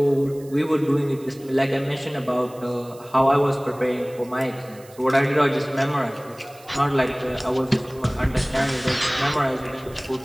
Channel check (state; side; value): noise; right; hiss, 24 dB below the sound